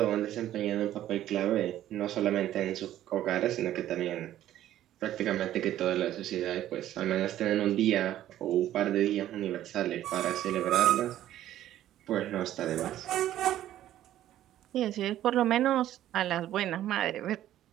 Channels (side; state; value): left; quieter; 12.7 dB